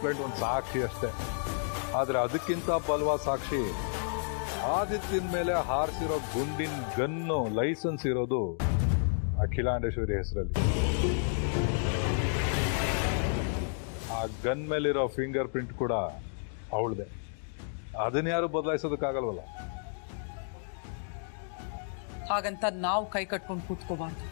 ಒಂದು ಸಾಕ್ಷಿ ಅಷ್ಟೇ. ಆದ್ರೆ ಅದಕ್ಕಿಂತ ಬಲವಾದ ಸಾಕ್ಷಿ ಆದಿತ್ಯನ ಮೇಲೆ ಹಾರಿಸಿರೋ ಗುಂಡಿನ ಗನ್ನು ಲೈಸೆನ್ಸ್ ಇರೋದು ಅಖಿಲಾಂಡೇಶ್ವರಿ ಹೆಸರಲ್ಲಿ. ಆ ಗನ್ ಮೇಲಿರೋ ಫಿಂಗರ್ ಪ್ರಿಂಟ್ ಕೂಡ ಅವಳದೆ. ಅದನ್ನ ಯಾರು ಬದಲಾಯಿಸೋದಕ್ಕಾಗಲ್ವಲ್ಲ. ಹಾಗಂತ ನಾವು ಕೈ ಕಟ್ಕೊಂಡು ಕೂತ್ಕೋಬಾರ್ದು.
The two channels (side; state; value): right; silent; digital silence